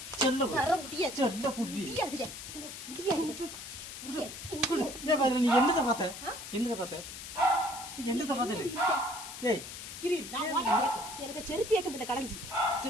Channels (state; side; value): noise; left; hiss, 10 dB below the sound